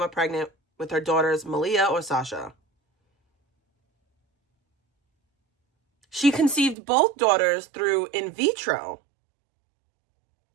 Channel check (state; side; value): drops out; left; at 6.8 s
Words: pregnant with her daughters Malia or Sasha. She conceived both daughters through in vitro.